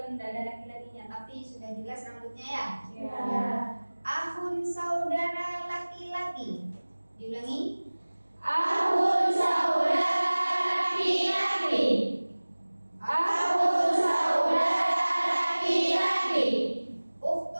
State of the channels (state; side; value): inverted; both; correlation -1.00